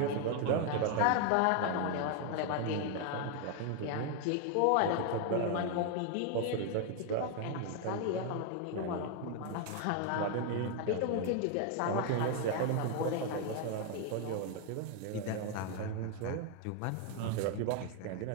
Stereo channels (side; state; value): both; different; correlation 0.01